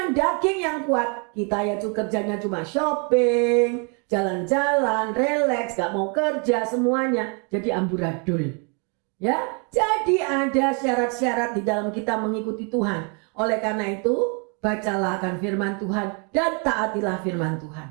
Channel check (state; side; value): quieter; left; 35.9 dB